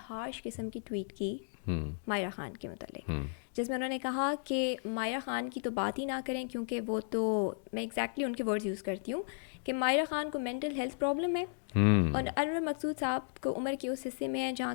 किस्म की ट्वीट की मायरा खान के मतलब, जिसमें उन्होंने कहा कि मायरा खान की तो बात ही ना करें, क्योंकि वो तो, मैं एग्जैक्टली उनके वर्ड्स यूज़ करती हूँ कि मायरा खान को मेंटल हेल्थ प्रॉब्लम है, और अनवर मकसूद साहब को उम्र के उस हिस्से में है जहाँ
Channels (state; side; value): silent; right; digital silence